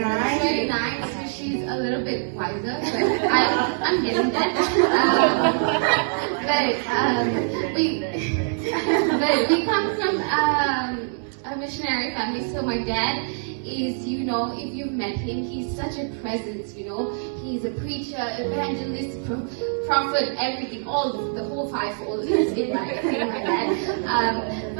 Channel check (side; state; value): left; silent; digital silence